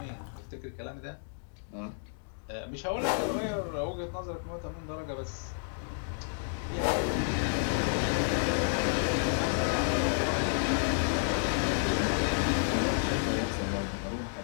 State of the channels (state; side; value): silent; right; digital silence